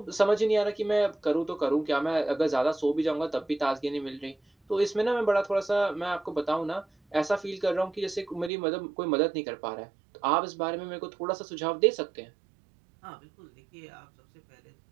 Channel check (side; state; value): left; drops out; at 8.5 s